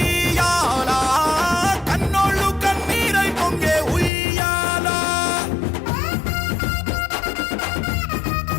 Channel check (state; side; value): drops out; right; at 4.1 s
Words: కన్నోళ్ళు కన్నీరై పొంగే ఉయ్యాల